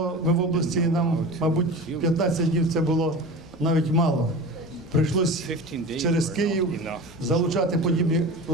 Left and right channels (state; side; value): normal; both; correlation 0.32